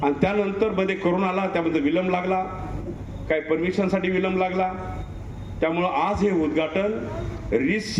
आणि त्यानंतर मध्ये कोरोना आला, त्यामध्ये विलंब लागला, काही परमिशनसाठी विलंब लागला. त्यामुळं आज हे उद्घाटन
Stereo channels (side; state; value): both; identical; correlation 1.00